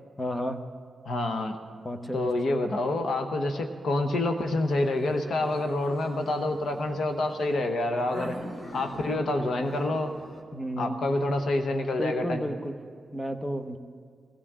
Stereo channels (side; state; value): both; normal; correlation 0.84